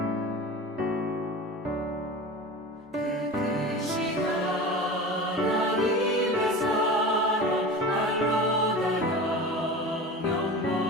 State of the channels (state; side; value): normal; both; correlation 0.32